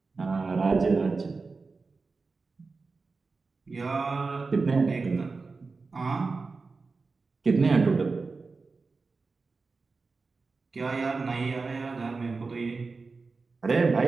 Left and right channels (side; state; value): left; quieter; 4.2 dB